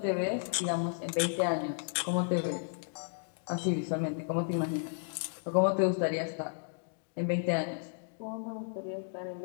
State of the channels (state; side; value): silent; right; digital silence